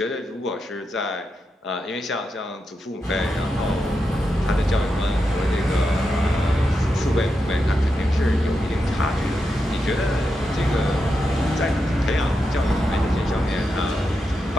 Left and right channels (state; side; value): normal; both; correlation 0.86